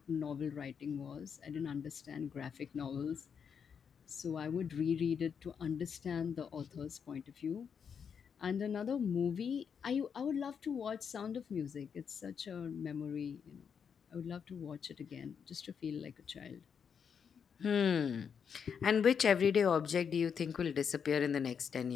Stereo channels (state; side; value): quieter; right; 7.0 dB